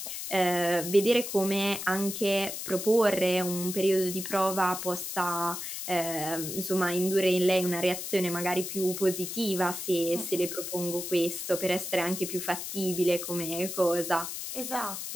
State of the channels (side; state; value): left; noise; hiss, 6 dB below the sound